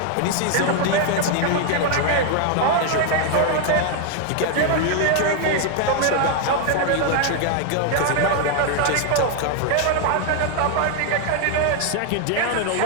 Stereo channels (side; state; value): both; different; correlation 0.00